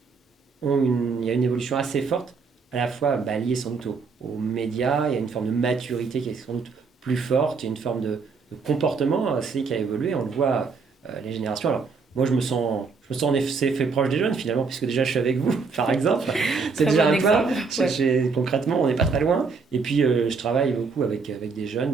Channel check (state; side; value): quieter; left; 4.9 dB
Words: il y a une évolution assez forte, à la fois liée sans doute aux médias. Il y a une forme de maturité qui est sans doute plus forte, il y a une forme de comportement aussi qui a évolué. On le voit, les générations. Alors, moi, je me sens en effet fait proche des jeunes finalement, puisque déjà je suis avec vous, par exemple. C'est déjà un pas. Ouais. Concrètement, on n'est pas très loin. Et puis, je travaille beaucoup avec des